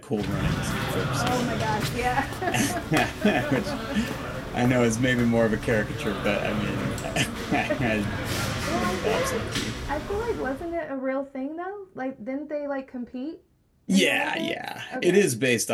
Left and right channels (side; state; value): both; identical; correlation 1.00